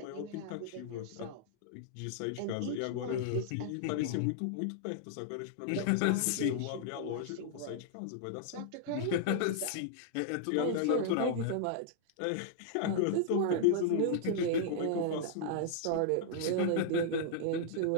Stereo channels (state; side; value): different; both; correlation -0.01